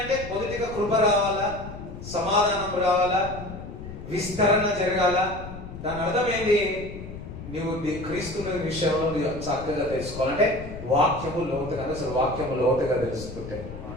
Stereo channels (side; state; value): left; noise; rumble, 11 dB below the sound